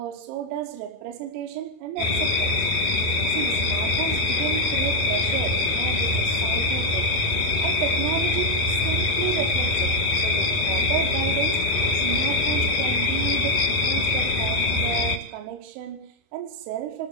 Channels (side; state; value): left; late; 28 ms